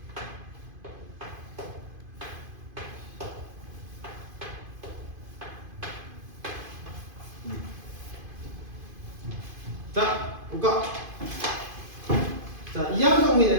자, 볼까? 자, 이항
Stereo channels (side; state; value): left; late; 2.5 ms